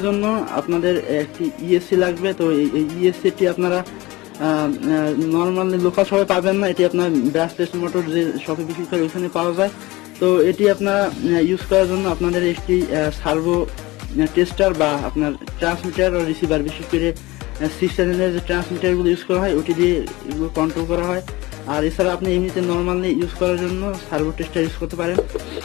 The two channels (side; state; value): right; quieter; 20.8 dB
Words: জন্য আপনাদের একটি ইএসসি লাগবে। তো এই ইএসসিটি আপনারা নর্মালি লোকাল শপে পাবেন না, এটি আপনার ব্রাশলেস মোটর যে শপে বিক্রি করে ওইখানে পাওয়া যায়। তো এটি আপনারা ইউজ করার জন্য আপনাদের একটি সার্ভো টেস্টার বা আপনার ট্রান্সমিটার ও রিসিভার, বিশেষ করে 6 চ্যানেলের যে ট্রান্সমিটারগুলো ইউজ করা হয় ওটি দিয়ে এগুলো কন্ট্রোল করা হয়। আর এছাড়া আপনি এমনিতে নর্মালি ইউজ করার জন্য সার্ভো টেস্টার ইউজ করতে পারেন।